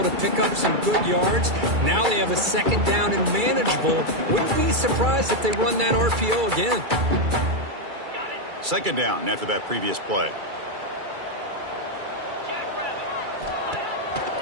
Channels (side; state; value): left; late; 2.3 ms